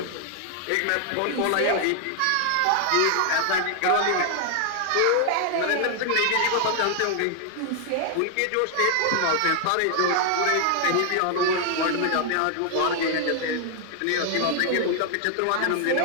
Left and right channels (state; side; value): different; both; correlation 0.00